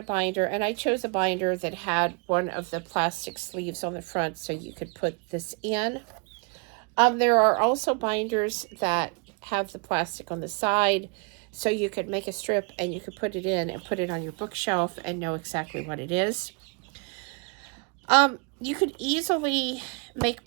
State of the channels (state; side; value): quieter; left; 35.7 dB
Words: binder, and I chose a binder that had one of the plastic sleeves on the front so you could put this in. There are also binders that have the plastic on the side, so you could make a strip and you could put it in and put it on your bookshelf and know exactly what it is. You could easily make